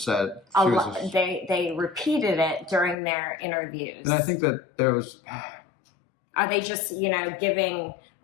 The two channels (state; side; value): drops out; right; at 3.0 s